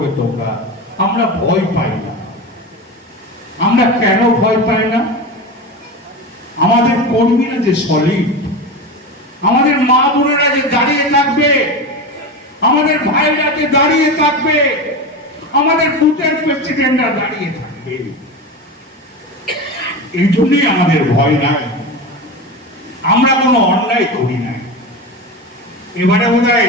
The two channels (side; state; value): both; normal; correlation 0.24